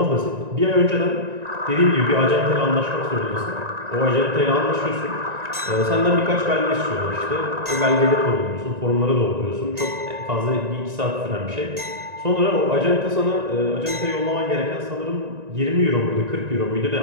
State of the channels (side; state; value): left; late; 1.9 ms